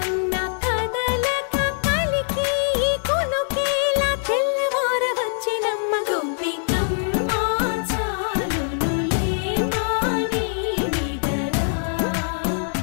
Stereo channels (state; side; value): silent; right; digital silence